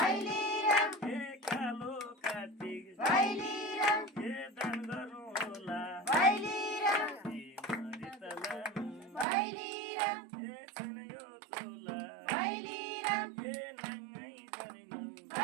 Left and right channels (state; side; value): drops out; left; at 9.2 s